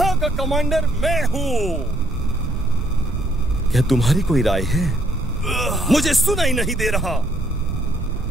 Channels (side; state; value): right; noise; rumble, 6 dB below the sound